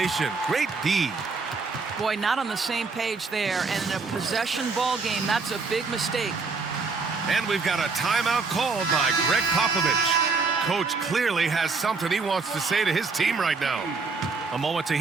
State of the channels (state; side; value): quieter; left; 4.4 dB